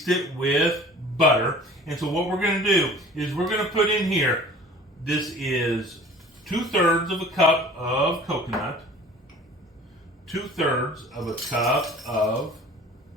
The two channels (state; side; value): normal; both; correlation 0.45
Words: it with butter. And so what we're going to do is we're going to put in here, this is 2/3 of a cup of coconut, 2/3 of a cup of